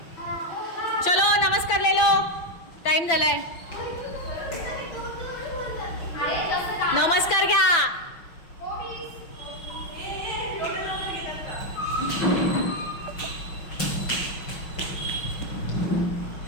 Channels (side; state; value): right; late; 5.9 ms